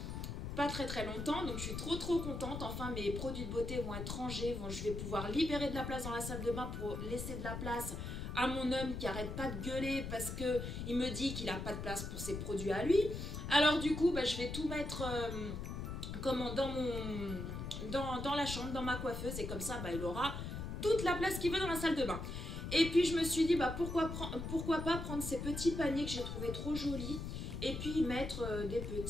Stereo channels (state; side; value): noise; left; rumble, 5 dB below the sound